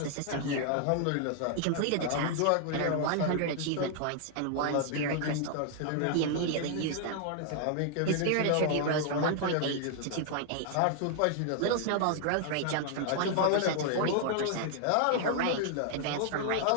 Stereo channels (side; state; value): both; different; correlation 0.00